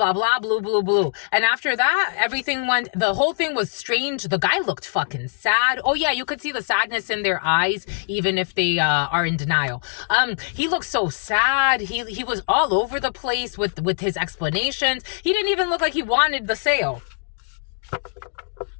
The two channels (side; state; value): right; silent; digital silence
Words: blah, blue, blue, blue. And after that, everything went, the whole thing was strange. The guy looked fucking sad. Oh, yeah, you could see the sadness in their eyes, even if they are in denial. He looked so sad. He was all over the place with his explanations. He didn't even look like he wanted the sale.